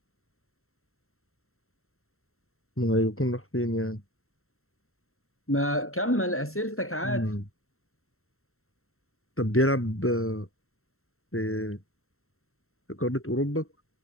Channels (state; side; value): late; right; 0.62 ms